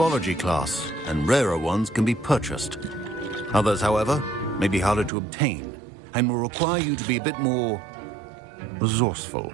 class, and rarer ones can be purchased. Others, however, may be harder to obtain, and will require you to be a bit more resourceful.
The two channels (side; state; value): left; drops out; at 5.1 s